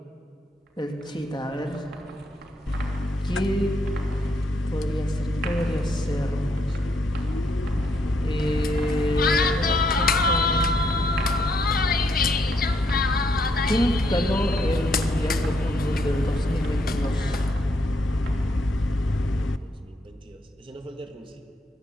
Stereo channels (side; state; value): both; normal; correlation 0.75